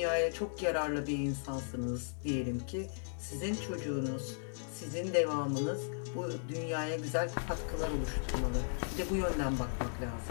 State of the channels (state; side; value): silent; right; digital silence